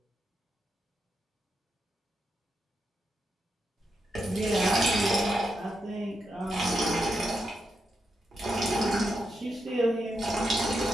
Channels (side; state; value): both; normal; correlation 0.84